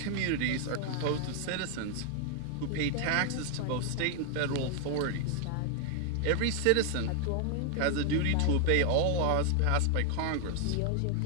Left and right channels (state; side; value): different; both; correlation 0.00